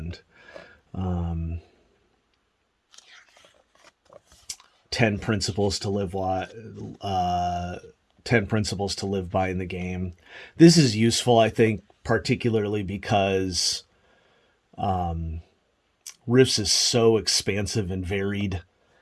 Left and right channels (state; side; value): identical; both; correlation 1.00